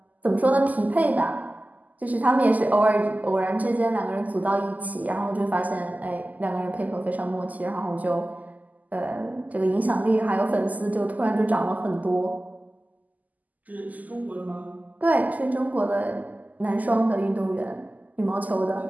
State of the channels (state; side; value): late; left; 0.079 ms